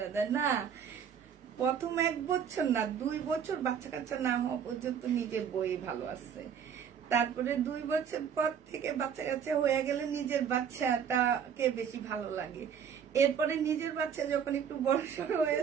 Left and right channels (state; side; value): quieter; left; 7.8 dB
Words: দেয় না, প্রথম 1 বছর না 2 বছর বাচ্চা কাচ্চা না হওয়া পর্যন্ত নিজের বই ভালো আছে, তারপরে 2 বছর পর থেকে বাচ্চা কাচ্চা হয়ে গেলে নিজের বাচ্চাটাকে বেশি ভালো লাগে, এরপরে নিজের বাচ্চা যখন একটু বড় সড় হয়ে